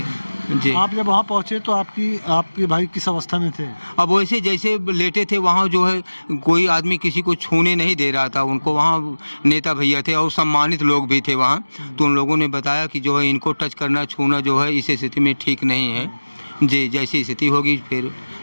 जी। आप जब वहाँ पहुँचे तो आपके भाई किस अवस्था में थे? अब वैसे जैसे लेटे थे, वहाँ जो है कोई आदमी किसी को छूने नहीं दे रहा था उनको। वहाँ नेता भैया थे और सम्मानित लोग भी थे वहाँ, तो उन लोगों ने बताया कि जो है इनको टच करना, छूना जो है इस स्थिति में ठीक नहीं है। जी, जैसी स्थिति होगी फिर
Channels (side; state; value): both; inverted; correlation -1.00